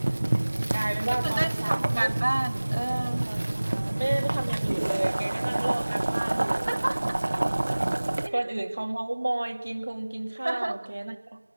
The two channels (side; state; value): both; inverted; correlation -1.00